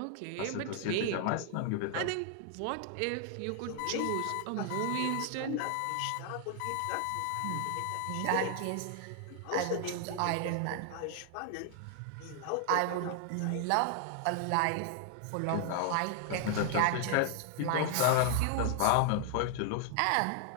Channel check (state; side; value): different; both; correlation 0.00